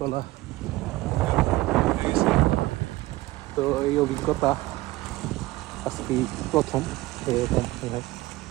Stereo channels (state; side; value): quieter; left; 18.8 dB